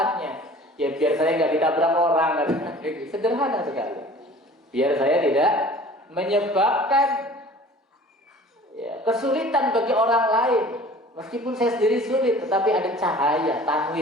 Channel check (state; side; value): normal; both; correlation 0.46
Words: Ya biar saya nggak ditabrak orang. Sederhana sekali. Biar saya tidak menyebabkan kesulitan bagi orang lain. Meskipun saya sendiri sulit, tetapi ada cahaya,